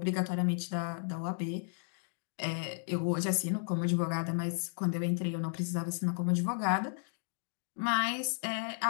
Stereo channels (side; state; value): right; silent; digital silence